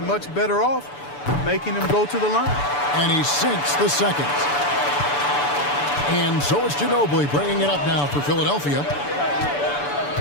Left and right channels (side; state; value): right; late; 6.9 ms